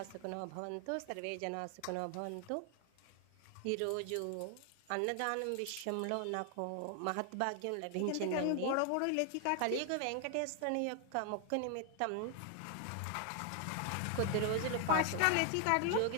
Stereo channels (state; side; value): different; both; correlation 0.00